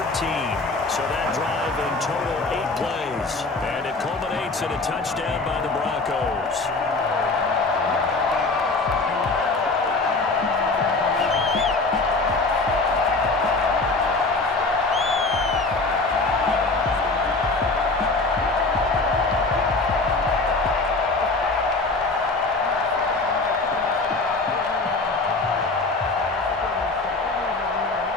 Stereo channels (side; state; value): right; quieter; 3.5 dB